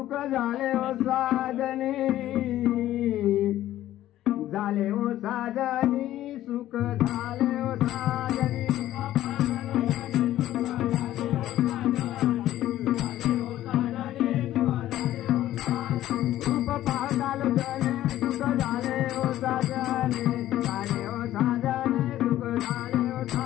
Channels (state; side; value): quieter; right; 13.6 dB